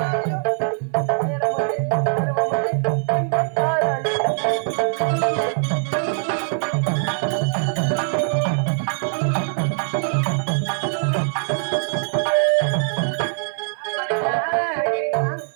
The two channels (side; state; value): left; silent; 56 dB below the other